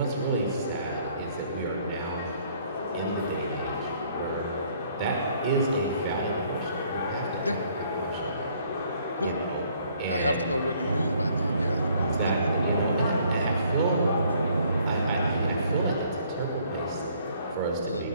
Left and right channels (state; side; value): inverted; both; correlation -0.63